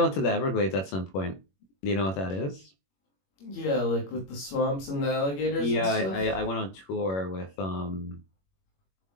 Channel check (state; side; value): late; right; 21 ms